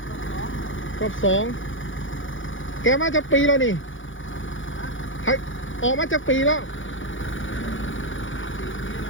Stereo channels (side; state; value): right; late; 0.57 ms